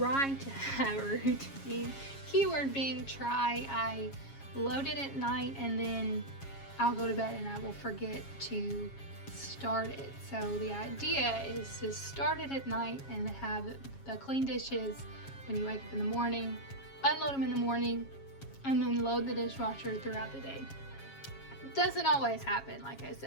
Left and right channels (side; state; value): right; late; 7.3 ms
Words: to have a routine. Keyword being try. I load it at night, and then I'll go to bed and I will forget to start it. So the idea is to start it at night and have the clean dishes when you wake up in the morning, unload them in the morning, and then load the dishwasher throughout the day. It doesn't always happen, like I